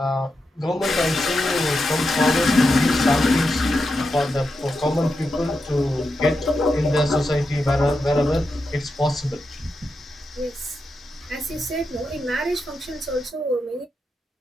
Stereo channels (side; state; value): both; normal; correlation 0.87